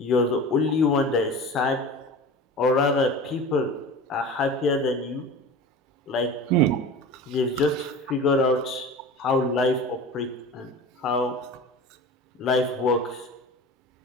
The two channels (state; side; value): normal; both; correlation 0.35